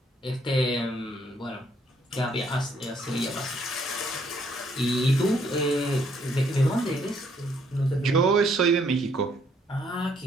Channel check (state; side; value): normal; both; correlation 0.68